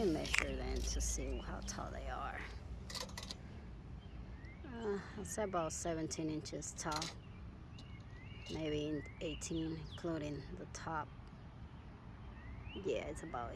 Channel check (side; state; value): both; identical; correlation 1.00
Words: measure them to see how tall they are. I'll say about 17 inches tall, maybe 18, including the top. Yeah, it's about